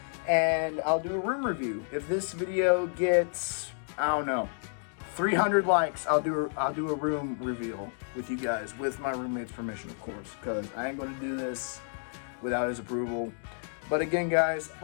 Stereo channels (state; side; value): silent; right; 58 dB below the other